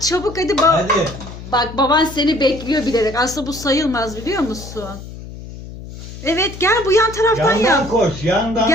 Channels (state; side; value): noise; left; hum, 13 dB below the sound